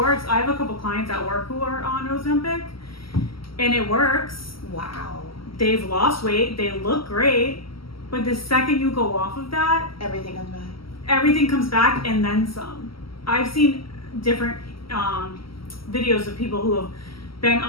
I have a couple clients at work who are on Ozempic, and it works. Wow. They've lost weight. They look great. But the second you go off of that, everything comes back. Everything comes back and then some. I've seen different videos of people who have been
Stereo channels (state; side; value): late; right; 0.75 ms